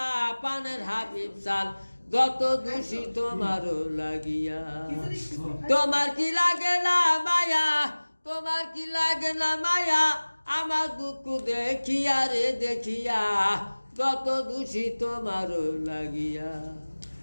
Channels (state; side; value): inverted; both; correlation -1.00